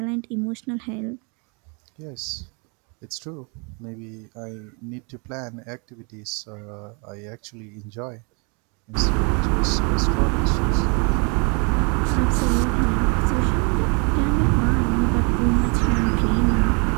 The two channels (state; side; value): quieter; left; 34.4 dB